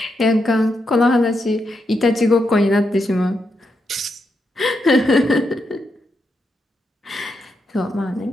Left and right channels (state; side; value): normal; both; correlation 0.83